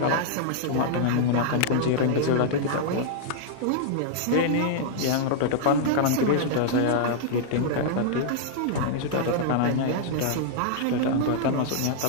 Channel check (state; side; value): different; both; correlation -0.01